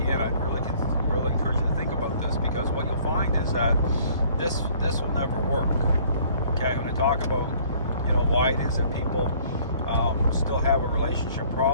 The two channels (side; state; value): both; inverted; correlation -0.57